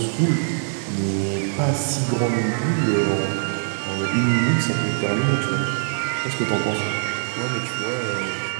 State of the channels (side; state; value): left; silent; digital silence